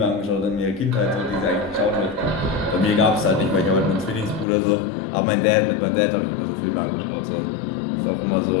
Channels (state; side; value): drops out; right; at 4.5 s